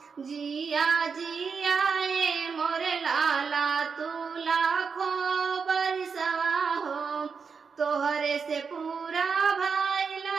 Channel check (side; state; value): left; quieter; 5.6 dB